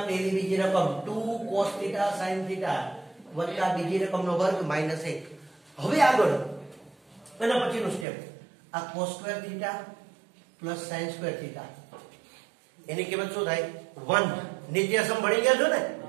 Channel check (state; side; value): drops out; left; at 8.1 s